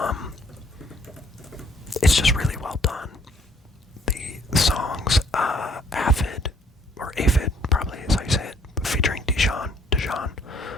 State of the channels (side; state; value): both; normal; correlation 0.63